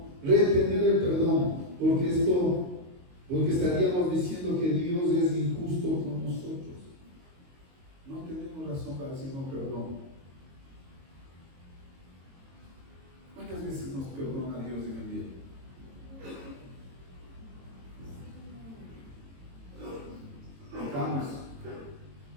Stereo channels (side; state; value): left; late; 22 ms